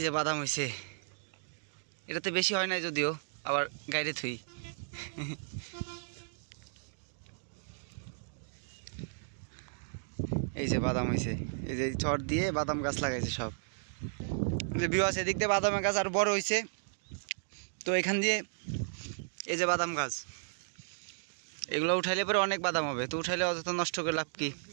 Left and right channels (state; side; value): silent; left; digital silence